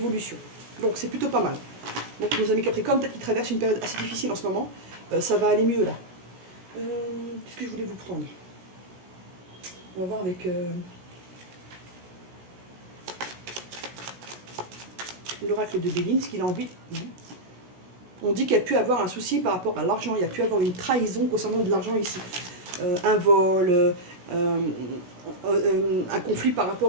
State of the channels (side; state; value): left; late; 16 ms